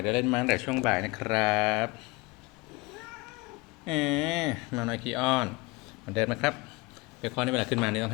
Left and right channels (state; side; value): quieter; right; 24.9 dB